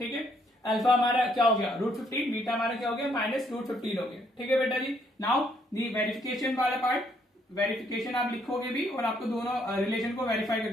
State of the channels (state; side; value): normal; both; correlation 0.70